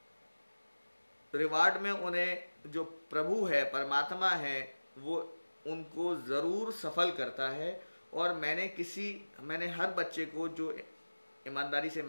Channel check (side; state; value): both; inverted; correlation -1.00